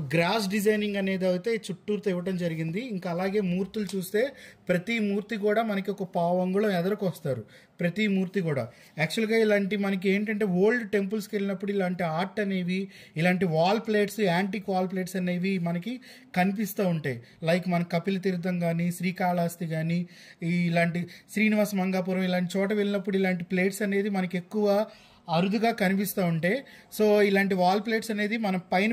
గ్రాస్ డిజైనింగ్ అనేది అయితే చుట్టూతో ఇవ్వడం జరిగింది. ఇంకా అలాగే మూర్తులు చూస్తే ప్రతి మూర్తి కూడా మనకి ఒక పావు అంగుళం ఎదరకు వస్తారు, ప్రతి మూర్తి కూడా. యాక్చువల్గా ఇలాంటి మనకి ఏంటంటే ఓల్డ్ టెంపుల్స్కి వెళ్ళినప్పుడు ఇలాంటి ఆర్ట్ అనేవి, ఇలాంటి wall plates, antique wall plates అనేవి మనకి కనిపిస్తూ ఉంటాయి. లైక్ మన కపిల తీర్థం కానీ, శ్రీకాళహస్తి కానీ, ఇలాంటి శ్రీనివాస మంగాపురం ఇలాంటి చోట వెళ్ళినప్పుడు ఇలాంటి ప్లేట్స్ అనేది మనకి ఎక్కువ అరుదుగా కనిపిస్తూ ఉంటాయి. సో ఇలాంటి వాల్ ప్లేట్స్ అనేది మనం పైన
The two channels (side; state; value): both; identical; correlation 1.00